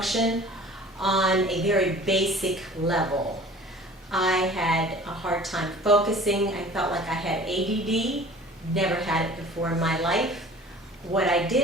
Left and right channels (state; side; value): normal; both; correlation 0.45